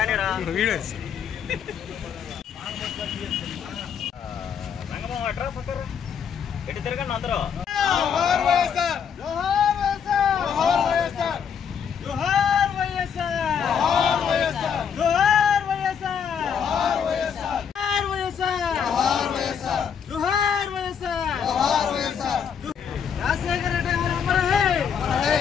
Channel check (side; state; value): right; quieter; 7.5 dB